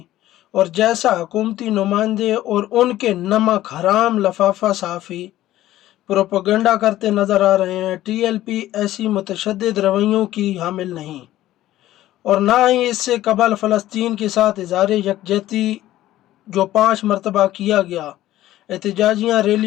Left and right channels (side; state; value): right; quieter; 14.5 dB